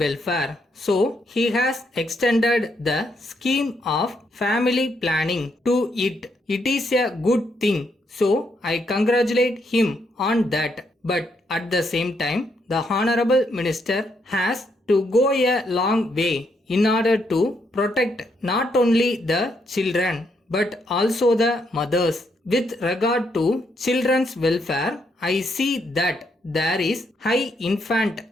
So, he has extended the scheme of family planning to it. It is a good thing. So, I congratulate him on that. But at the same time, the Honorable Minister has to go a long way in order to protect not only the children but also the mothers. With regard to children's welfare, I see that there is high infant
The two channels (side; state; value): both; normal; correlation 0.76